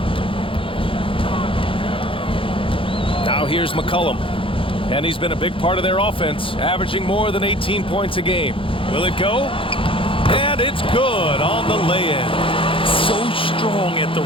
Now here's McCollum. And he's been a big part of their offense, averaging more than 18 points a game. Will it go? And it's good on the lay-in. So strong at the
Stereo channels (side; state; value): right; late; 0.26 ms